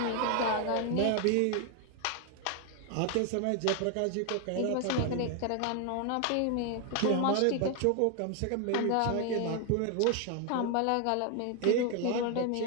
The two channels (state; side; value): different; both; correlation 0.01